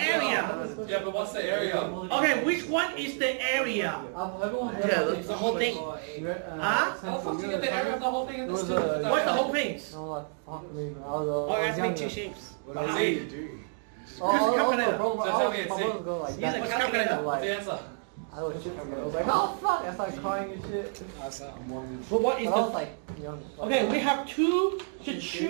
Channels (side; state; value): left; silent; 57 dB below the other